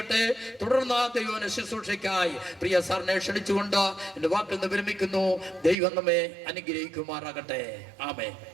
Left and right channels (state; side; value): drops out; left; at 5.8 s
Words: തുടർന്ന് ദൈവവചന ശുശ്രൂഷയ്ക്കായി പ്രിയ സാറിനെ ക്ഷണിച്ചുകൊണ്ട് എന്റെ വാക്കിൽ നിന്ന് വിരമിക്കുന്നു. ദൈവം നമ്മെ അനുഗ്രഹിക്കുമാറാകട്ടെ. ആമേൻ.